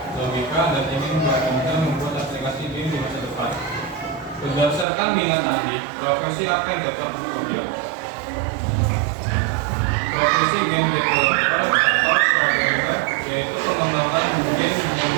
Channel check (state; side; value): drops out; left; at 4.9 s